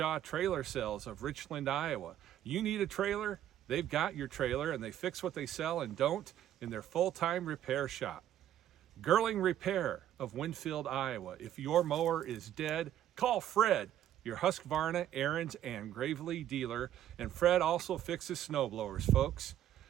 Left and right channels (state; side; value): quieter; left; 11.5 dB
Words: Trailer Sales of Richland, Iowa. You need a trailer? They've got your trailer, and they fix what they sell and don't in their full-time repair shop. Gerling Repair of Winfield, Iowa. If your mower is dead, call Fred, your Husqvarna, Ariens, and Gravely dealer. And Fred also fixes snowblowers, folks.